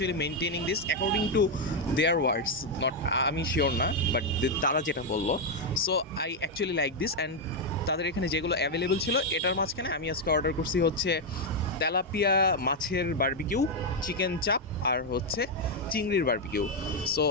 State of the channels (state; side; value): normal; both; correlation 0.02